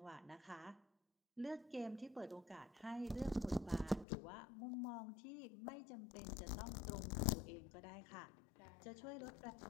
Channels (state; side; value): drops out; right; at 4.0 s